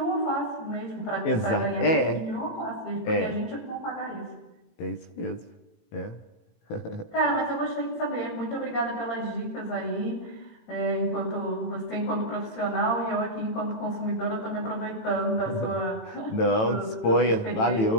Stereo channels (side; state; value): right; late; 18 ms